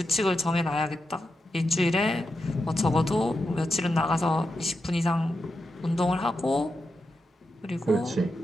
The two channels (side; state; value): both; normal; correlation 0.88